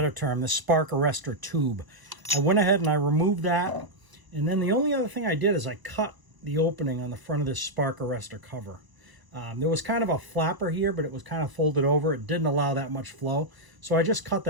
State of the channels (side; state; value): left; late; 1.0 ms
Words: term, the spark arrestor tube. I went ahead and I removed that. And then the only other thing I did is I cut the opening on the front of this spark arrestor cover. There was kind of a flapper here, but it was kind of folded over. It didn't allow that much flow. So I just cut